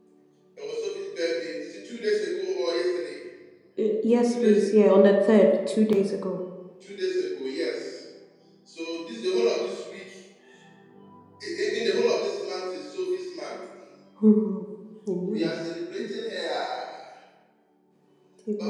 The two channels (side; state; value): both; identical; correlation 1.00